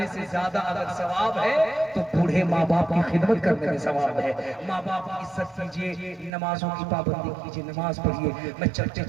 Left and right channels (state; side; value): drops out; left; at 6.3 s